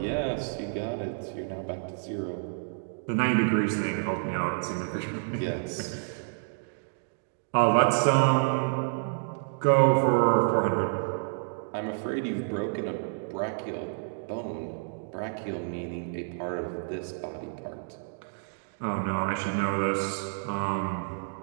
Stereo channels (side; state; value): left; silent; digital silence